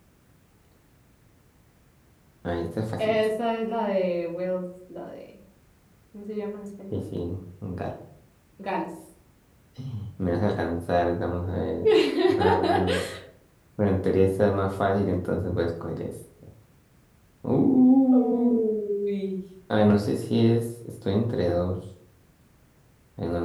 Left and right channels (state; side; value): identical; both; correlation 1.00